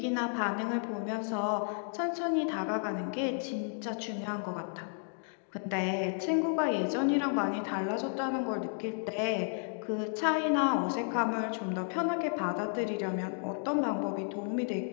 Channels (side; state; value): right; silent; 56 dB below the other